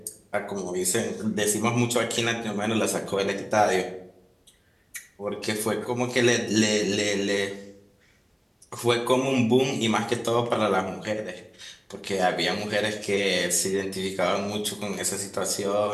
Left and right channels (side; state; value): both; identical; correlation 1.00